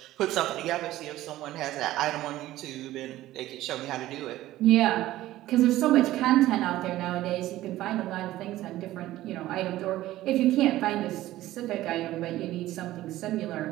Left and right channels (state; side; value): quieter; left; 15.3 dB